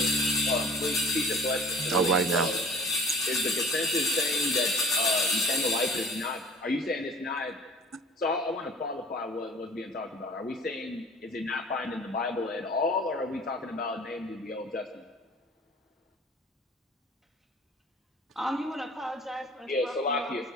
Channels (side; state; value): both; normal; correlation 0.47